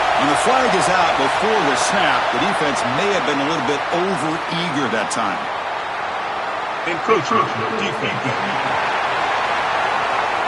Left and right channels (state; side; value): identical; both; correlation 1.00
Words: When the flag is out before the snap, the defense may have been a little bit over-eager that time. Encroachment defense.